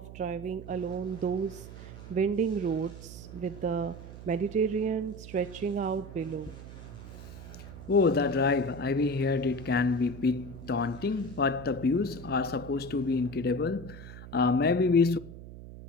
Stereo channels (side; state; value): right; noise; hum, 13 dB below the sound